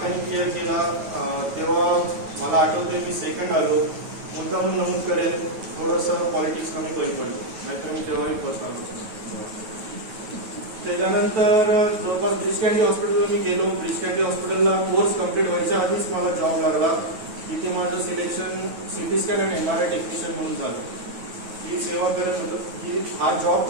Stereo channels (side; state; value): left; late; 9.3 ms